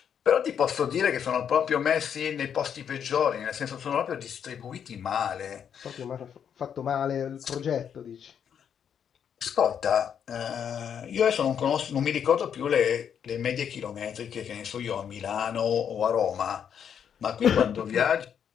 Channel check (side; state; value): right; quieter; 8.2 dB